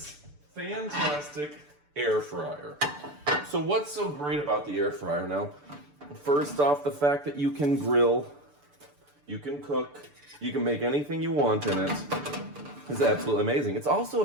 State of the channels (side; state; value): left; late; 6.8 ms